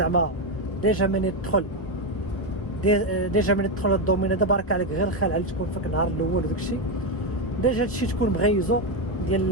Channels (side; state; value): right; late; 1.4 ms